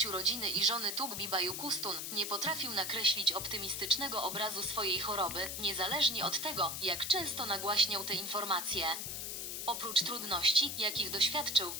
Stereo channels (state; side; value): noise; left; hiss, 4 dB below the sound